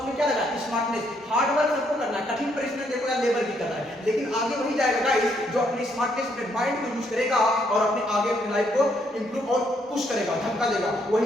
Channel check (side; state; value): both; normal; correlation 0.72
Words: क्या लगा? स्मार्टनेस। हार्ड वर्क सबको करना है, कठिन परिश्रम देखो यार लेबर भी कर रहा है, लेकिन आगे वही जाएगा गाइस जो अपनी स्मार्टनेस, अपने माइंड को यूज करेगा और अपने आगे अपनी लाइफ को इंप्रूव और पुश करेगा, धक्का देगा,